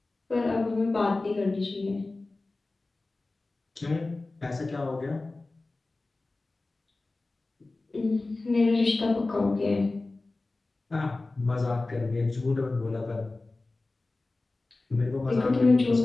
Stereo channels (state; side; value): quieter; right; 3.2 dB